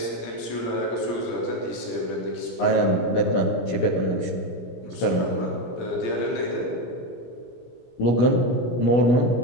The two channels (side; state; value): right; late; 17 ms